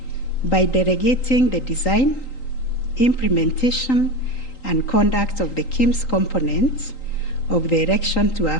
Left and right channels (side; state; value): right; late; 3.8 ms